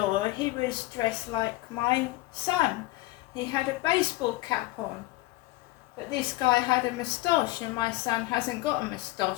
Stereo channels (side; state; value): right; quieter; 19.2 dB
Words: he was dressed like my son. He had a baseball cap on, but this guy had a moustache, and my son hasn't got a